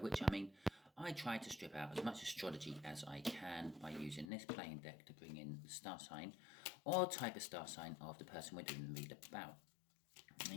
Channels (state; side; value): drops out; right; at 4.3 s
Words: I mean I try to strip out as much astrology as I can by using this playing deck to bring in the star sign or type of star sign of the person we're doing the read about.